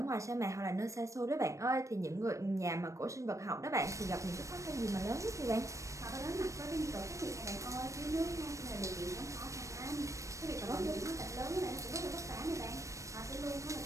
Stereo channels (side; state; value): left; late; 0.15 ms